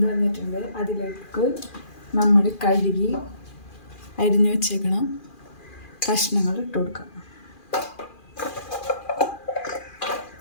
വന്നിട്ടുണ്ട്. അതിലേക്ക് നമ്മൾ കഴുകി അരിഞ്ഞു വെച്ചേക്കണം കഷ്ണങ്ങൾ ഇട്ട് കൊടുക്കാം.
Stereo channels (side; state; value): right; late; 2.4 ms